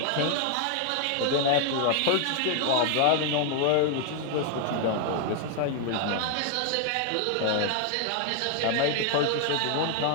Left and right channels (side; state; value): both; different; correlation 0.00